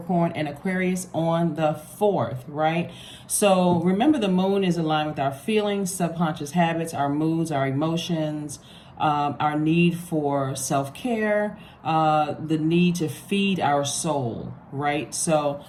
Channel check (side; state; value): both; identical; correlation 1.00